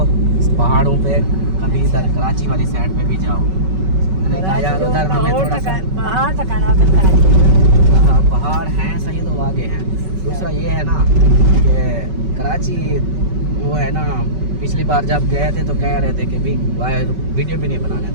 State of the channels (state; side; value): late; left; 5.3 ms